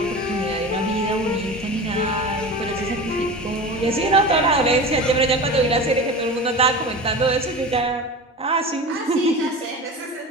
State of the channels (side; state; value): both; normal; correlation 0.31